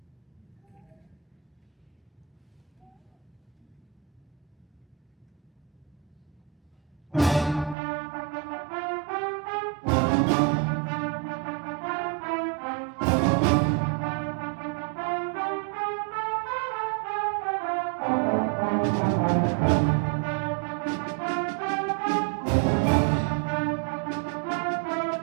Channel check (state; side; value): drops out; left; at 7.8 s